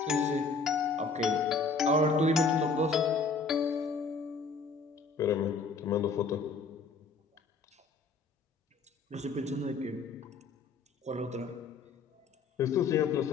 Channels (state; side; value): quieter; right; 4.4 dB